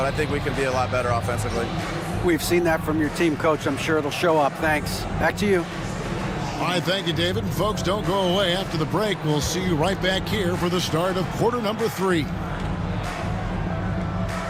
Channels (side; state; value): both; identical; correlation 1.00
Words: I think we can be a lot better offensively. We've seen that from your team, Coach. I'm sure it'll show up. Thanks. Back to you. All right, thank you, David. And folks, don't go away. After the break, we'll see you right back here for the start of quarter number 3.